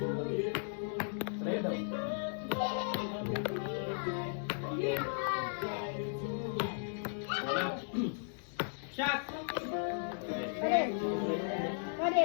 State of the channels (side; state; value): right; silent; digital silence